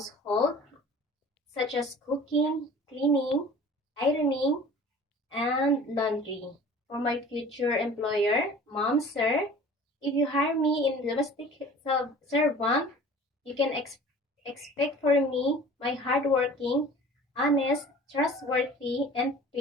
such as cooking, cleaning, ironing, and laundry. For my future employer, Mom, Sir, if you hire me in domestic servant, you can expect for me my hardworking, honest, trustworthy, and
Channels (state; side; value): normal; both; correlation 0.44